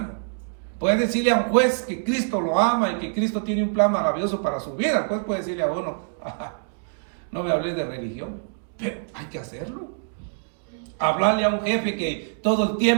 Puede decirle a un juez que Cristo lo ama y que Cristo tiene un plan maravilloso para su vida. El juez puede decirle a uno, no me hables de religión, pero hay que hacerlo. Hablarle a un jefe que todo el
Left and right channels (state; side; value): silent; left; digital silence